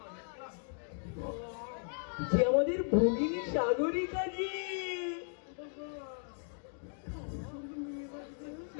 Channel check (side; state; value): right; silent; 54 dB below the other